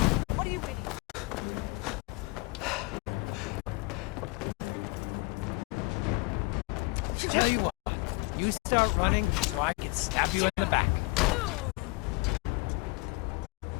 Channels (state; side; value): quieter; right; 26.5 dB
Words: Tell you what, you start running, or I can stab you in the back.